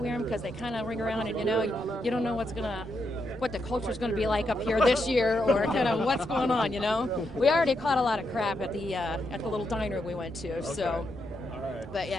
them? Because they kind of ring around, and, you know, you don't know what the culture's going to be like up here this year, or kind of what's going on, you know? We already caught a lot of crap at the little diner we went to, so. All right. But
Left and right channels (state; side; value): normal; both; correlation 0.81